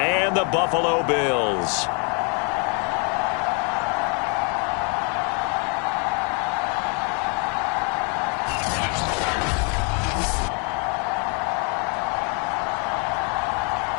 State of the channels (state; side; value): quieter; right; 36.9 dB